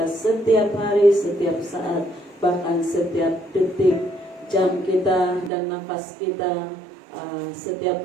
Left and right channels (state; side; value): drops out; left; at 5.5 s